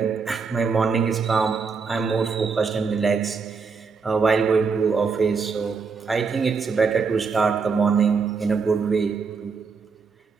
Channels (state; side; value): quieter; left; 5.2 dB